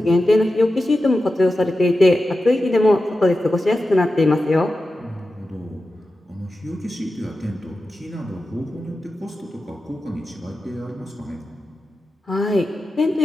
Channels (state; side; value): normal; both; correlation 0.92